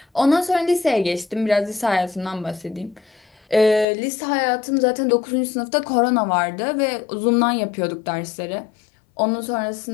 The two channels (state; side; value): drops out; right; at 3.9 s